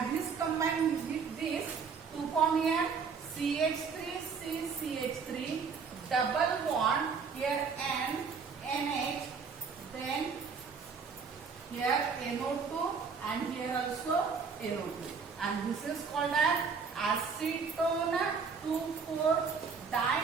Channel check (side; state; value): left; quieter; 5.5 dB